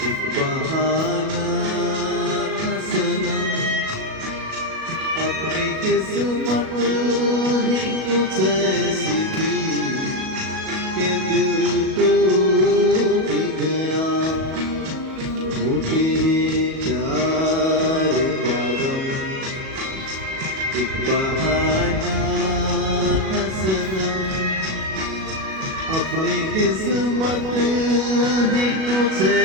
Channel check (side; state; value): left; late; 37 ms